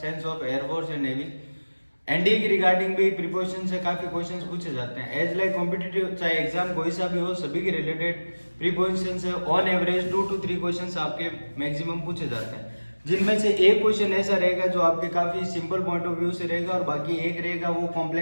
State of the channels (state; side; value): inverted; both; correlation -1.00